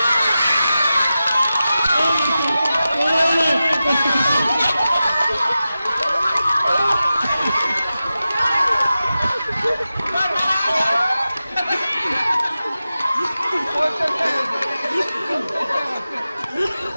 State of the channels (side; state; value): both; inverted; correlation -0.93